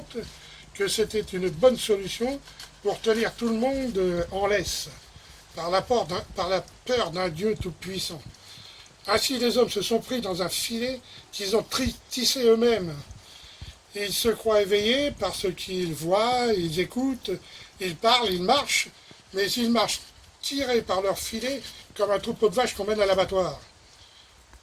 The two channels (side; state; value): both; identical; correlation 1.00